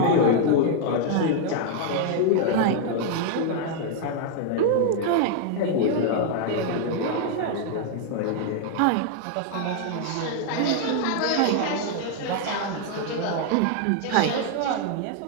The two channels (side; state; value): both; different; correlation 0.00